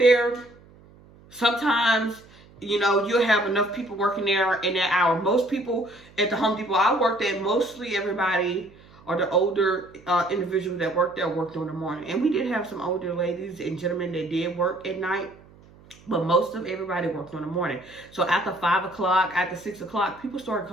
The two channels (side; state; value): right; noise; hum, 25 dB below the sound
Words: sometimes, you know, you'll have enough people working there in that hour. Most people at the Home Depot I worked at, mostly everybody, or the older individuals that worked there, worked in the morning. And we did have some older ladies and gentlemen that did work at night, but most of everybody worked in the morning. So after 5 o'clock, after 6 o'clock, people started